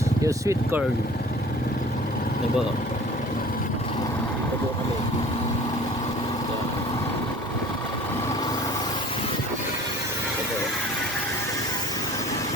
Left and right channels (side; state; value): both; normal; correlation 0.46